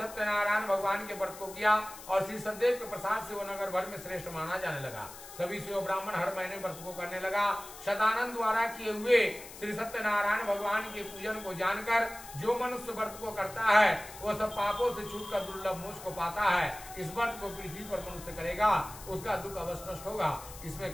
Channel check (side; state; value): left; noise; hiss, 15 dB below the sound